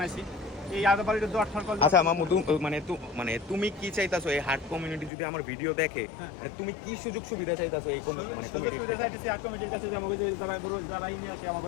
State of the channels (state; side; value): drops out; right; at 5.1 s